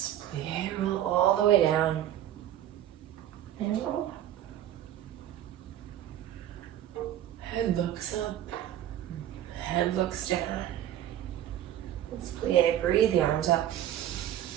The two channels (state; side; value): quieter; left; 11.8 dB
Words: Plie, roll all the way down. And roll. Head looks up. Head looks down. Let's plie. Breathe the arms up.